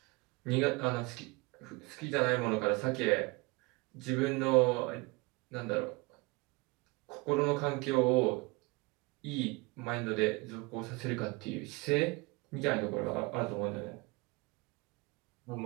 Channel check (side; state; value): left; quieter; 25.7 dB